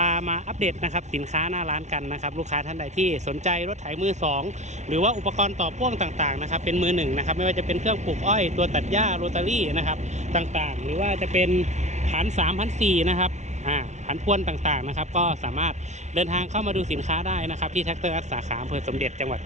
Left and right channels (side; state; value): left; late; 0.33 ms